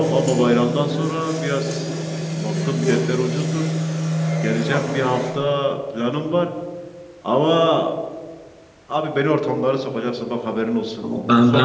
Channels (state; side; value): identical; both; correlation 1.00